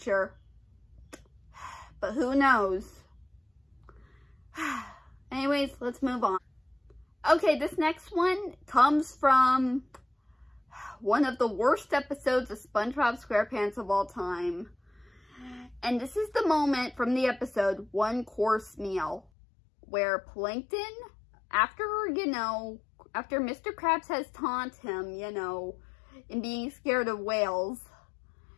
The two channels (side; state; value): right; drops out; at 19.2 s